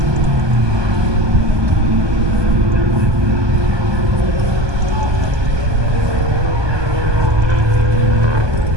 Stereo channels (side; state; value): left; late; 1.2 ms